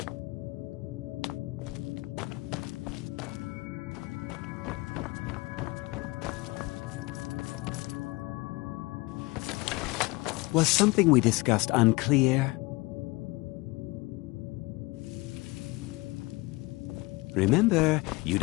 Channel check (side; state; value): right; quieter; 23.5 dB